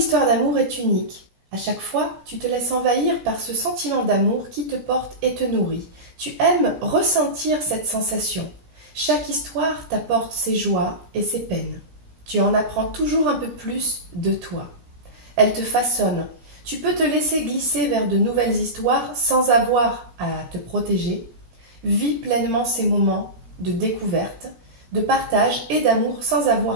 d'amour est unique. À chaque fois, tu te laisses envahir par ce sentiment d'amour qui te porte et te nourrit. Tu aimes ressentir cette sensation. Chaque histoire t'apporte ses joies et ses peines. Tu en apprends toujours un peu plus de toi. Elle te façonne. Tu peux te laisser glisser vers de nouvelles histoires sans avoir à te protéger. Vis pleinement ces moments de découverte, de partage et d'amour sans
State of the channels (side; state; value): left; late; 17 ms